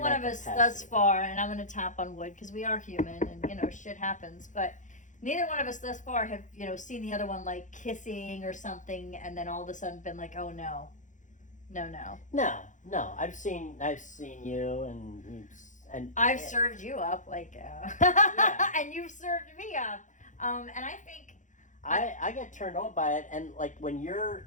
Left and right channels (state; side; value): late; right; 0.36 ms